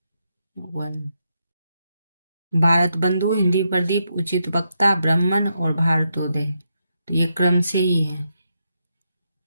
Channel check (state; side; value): inverted; both; correlation -0.82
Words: 1 भारत बंधु, हिंदी प्रदीप, उचित वक्ता, ब्राह्मण और भारतोदय, तो ये क्रम से ही है।